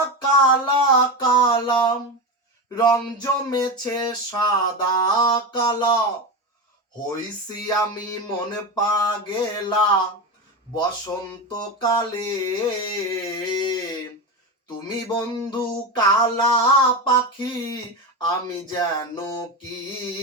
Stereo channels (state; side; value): normal; both; correlation 0.19